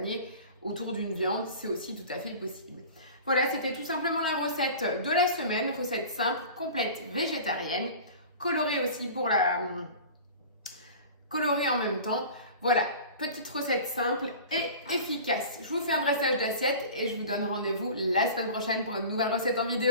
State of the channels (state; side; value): inverted; both; correlation -0.39